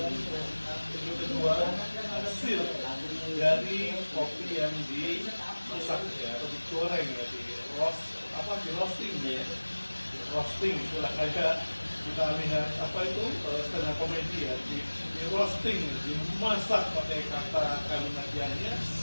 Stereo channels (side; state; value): both; inverted; correlation -1.00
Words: kedua hasil dari kopi yang dimasak ya atau digoreng ya di roasting ya. Roasting itulah kayak kita lihat apa itu tengah komedi ya di roasting, dimasak pakai kata kalimat yangnya